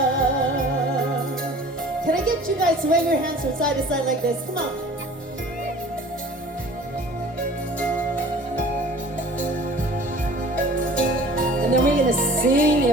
Can I get you guys to wave your hands from side to side like this? Come on. And then we're gonna sing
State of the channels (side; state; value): both; normal; correlation 0.46